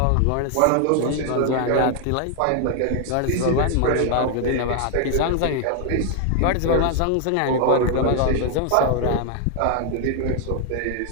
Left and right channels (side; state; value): both; different; correlation 0.00